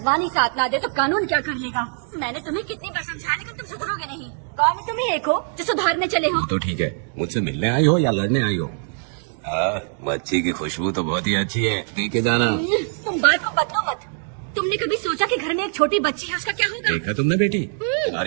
ही साथ ना दे तो कानून क्या कर लेगा? मैंने तुम्हें कितनी बार समझाया, लेकिन तुम सुधरोगे नहीं। गाँव में तुम ही एक हो जो सुधारने चले हो। तो ठीक है, मुझसे मिलने आई हो या लड़ने आई हो? मच्छी की खुशबू तो बहुत ही अच्छी है, पी के जाना। तुम बात को बदलो मत। तुमने कभी सोचा कि घर में एक छोटी बच्ची है, उसका क्या होगा? देखा तुमने बेटी,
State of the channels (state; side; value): silent; left; 64 dB below the other